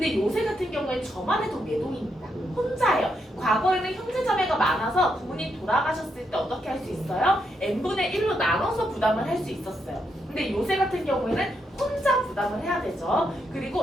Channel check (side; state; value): both; normal; correlation 0.80